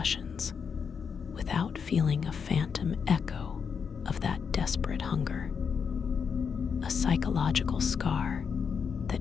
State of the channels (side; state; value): right; quieter; 6.4 dB